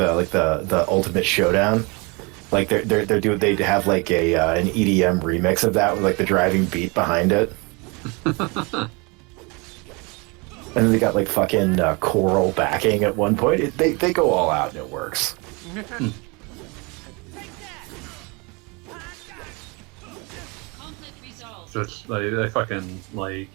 Ultimate Showdown. Like they'd have like an EDM remix of that with like the driving beat behind it. And then they got like fucking choral backing at one point. They go all out and it works. So it's like they fucking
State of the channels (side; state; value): left; quieter; 28.7 dB